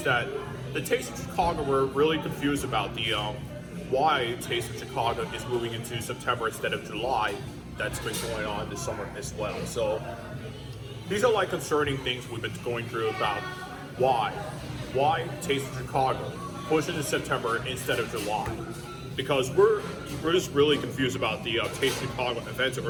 that the Taste of Chicago? We're really confused about the why Taste of Chicago is moving into September instead of July. That's been going on this summer as well. So these are like concerning things we've been going through about why Taste of Chicago pushes to September instead of July, because we're just really confused about the Taste of Chicago events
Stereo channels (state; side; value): identical; both; correlation 1.00